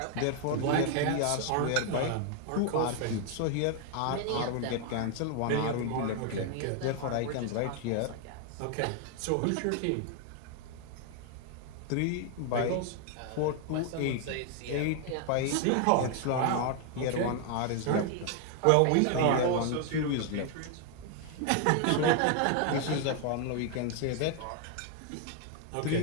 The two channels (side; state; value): both; different; correlation 0.00